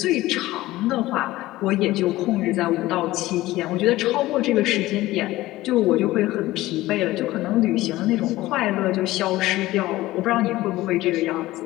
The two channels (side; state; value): right; quieter; 17.2 dB